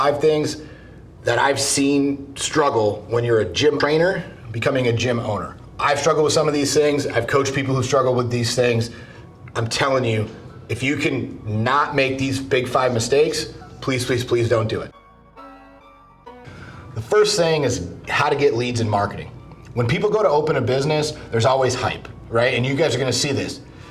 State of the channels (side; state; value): both; identical; correlation 1.00